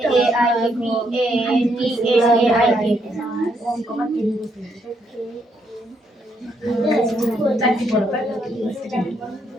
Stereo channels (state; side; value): normal; both; correlation 0.75